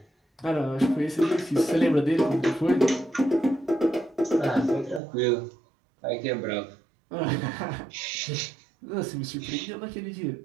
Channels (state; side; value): drops out; left; at 5.0 s